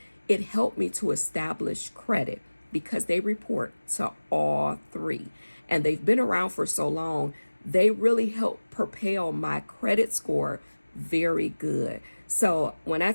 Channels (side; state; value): both; inverted; correlation -1.00